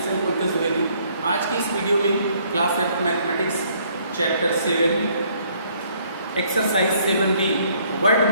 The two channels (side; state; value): both; inverted; correlation -0.65